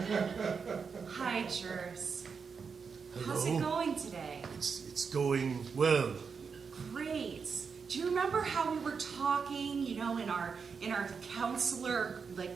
Hi, Jers. Hello. How's it going today? It's going well. Great. Do you remember how we were talking, in our counselor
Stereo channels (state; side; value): quieter; left; 5.7 dB